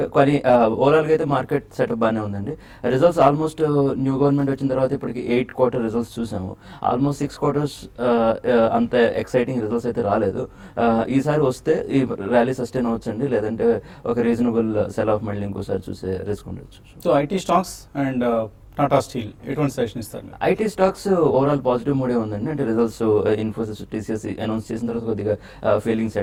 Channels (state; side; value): identical; both; correlation 1.00